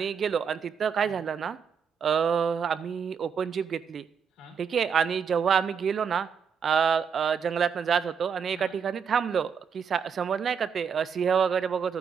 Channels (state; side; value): quieter; left; 6.8 dB